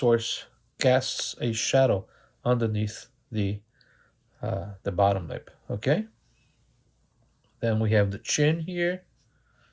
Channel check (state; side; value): identical; both; correlation 1.00